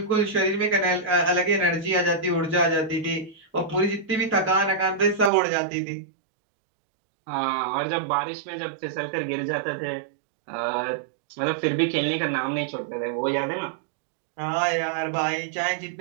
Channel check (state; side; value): drops out; left; at 5.3 s